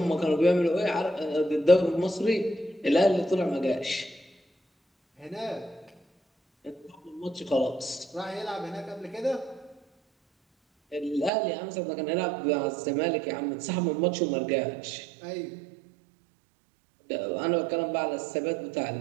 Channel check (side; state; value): left; drops out; at 11.3 s